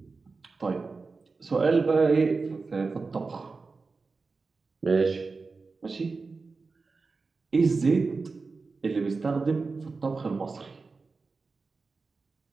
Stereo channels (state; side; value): quieter; left; 4.2 dB